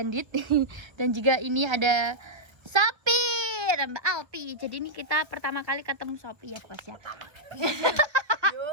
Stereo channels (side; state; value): left; late; 1.5 ms